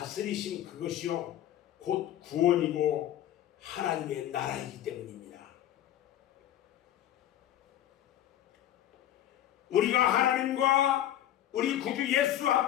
그것이요 곧 구원이고 하나님의 나라이기 때문입니다. 우리가 하나님과 우리 구주 예수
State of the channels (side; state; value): right; quieter; 12.2 dB